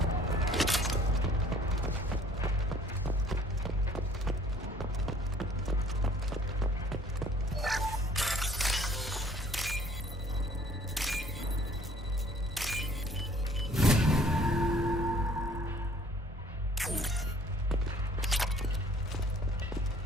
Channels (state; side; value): normal; both; correlation 0.56